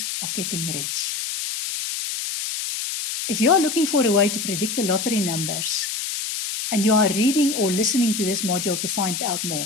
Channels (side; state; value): left; noise; hiss, 4 dB below the sound